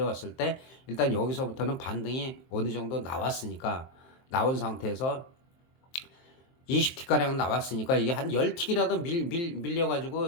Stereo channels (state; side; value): late; right; 23 ms